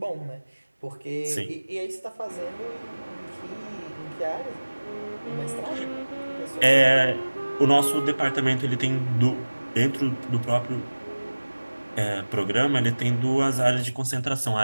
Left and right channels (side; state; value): both; inverted; correlation -1.00